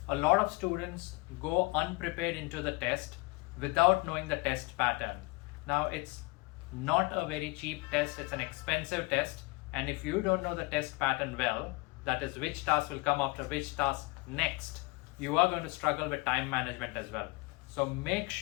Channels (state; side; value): quieter; right; 25.4 dB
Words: A lot of students go unprepared into the test without knowing the test pattern. Now, it's not a very cheap test, it's an expensive test, and if you don't know the test pattern well, that is which task will come after which task next, you are going to struggle with time management as well. So make